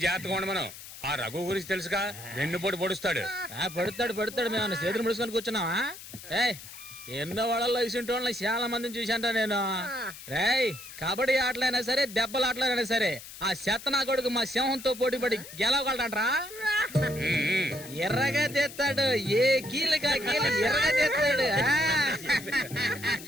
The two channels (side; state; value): left; noise; hiss, 14 dB below the sound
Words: జాగ్రత్తగా ఉండమను. ఆ రఘు గురించి తెలుసుగా, వెన్నుపోటు పొడుస్తాడు. పడుతాడు. మేము చేతులు ముడుచుకొని కూర్చున్నావా? ఏయ్, ఎన్నో వాళ్ళల్లో ఇసుంటి వాళ్ళని చాలా మందిని చూశాంట నేను. రేయ్, కబడ్డీ ఆటలైనా సరే, దెబ్బల ఆటలైనా సరే, ఆ శతనా కొడుకు మా సింహంతో పోటీపడి గెలవగలడంట్రా. ఎర్రగా తెస్తాడు. ఏ కీలుగా కీలు ఎర్రగా తెస్తాడు.